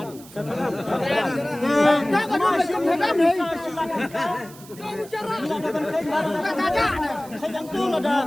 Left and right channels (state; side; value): noise; right; hiss, 20 dB below the sound